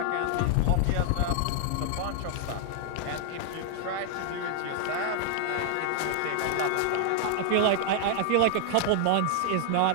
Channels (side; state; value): both; different; correlation 0.00